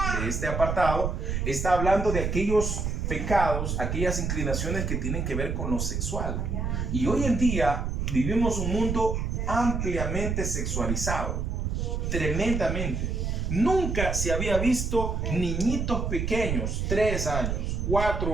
de este apartado, está hablando de aquellos pecados, aquellas inclinaciones que tienen que ver con lo sexual. Y hoy en día vivimos un mundo ampliamente sexualizado, tremendamente. Nunca se había visto niñitos pequeños, 3 años,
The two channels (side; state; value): right; noise; rumble, 1 dB below the sound